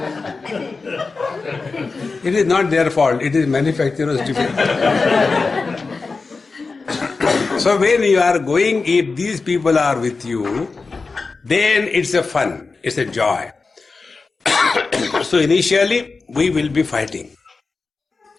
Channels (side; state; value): right; quieter; 4.2 dB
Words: It is not their fault, it is manufacturer's defect. So when you are going, if these people are with you, then it's a fun, it's a joy. So initially we will be fighting.